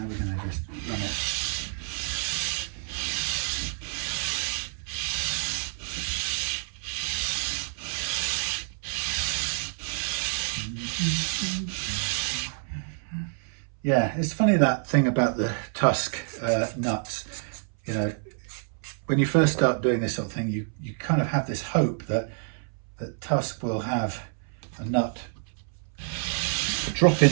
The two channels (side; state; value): left; silent; 59 dB below the other